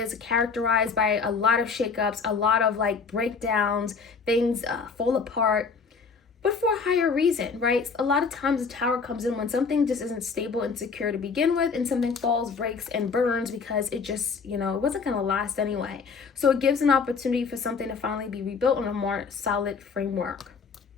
characterized by a lot of shakeups, a lot of like breakdowns, things fall apart, but for a higher reason, right? A lot of times the Tower comes in when something just isn't stable and secure to begin with, and something falls, breaks, and burns because it just, it wasn't going to last anyway. So it gives an opportunity for something to finally be rebuilt on a more solid framework.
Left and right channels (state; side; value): quieter; right; 5.2 dB